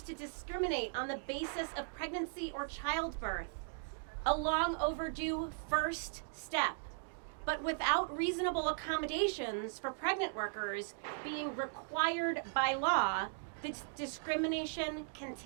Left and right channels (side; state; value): left; silent; digital silence